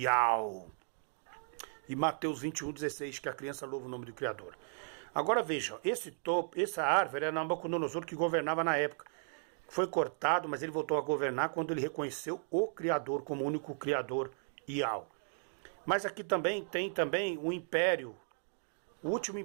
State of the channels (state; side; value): silent; left; digital silence